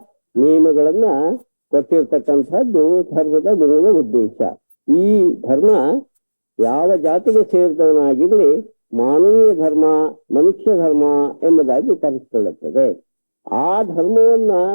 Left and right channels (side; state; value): both; inverted; correlation -1.00